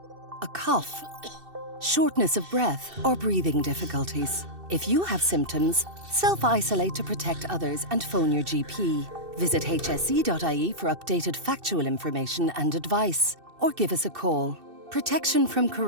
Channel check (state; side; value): late; left; 2.6 ms